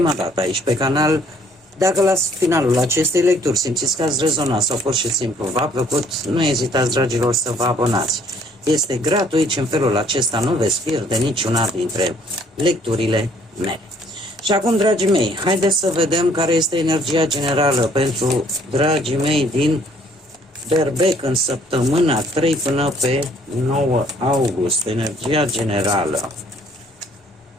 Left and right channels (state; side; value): normal; both; correlation 0.61